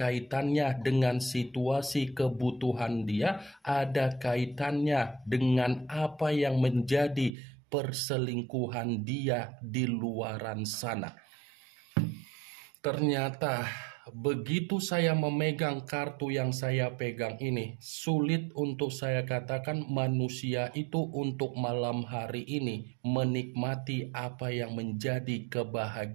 dengan situasi kebutuhan dia, ada kaitannya dengan apa yang menjadi perselingkuhan dia di luaran sana. Ternyata begitu saya memegang kartu yang saya pegang ini, sulit untuk saya katakan manusia itu untuk malam hari ini menikmati apa yang menjadi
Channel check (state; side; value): drops out; left; at 7.3 s